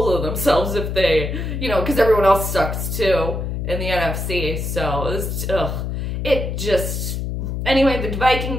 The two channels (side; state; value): left; noise; hum, 3 dB below the sound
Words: of themselves if they, because everyone else sucks too in the NFC. So, anyway, the